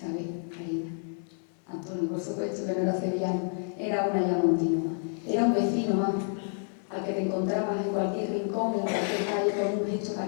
Marina. Antonio, por supuesto, que no era sevillano, era una ayamontina más. Era un vecino más al que te encontrabas en cualquier rincón, en cualquier calle, con un gesto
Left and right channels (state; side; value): silent; right; 58 dB below the other